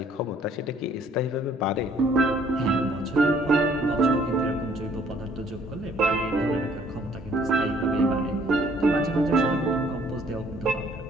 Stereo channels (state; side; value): normal; both; correlation 0.61